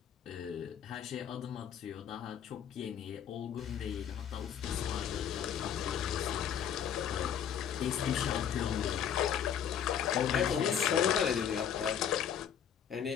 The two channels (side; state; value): right; quieter; 8.7 dB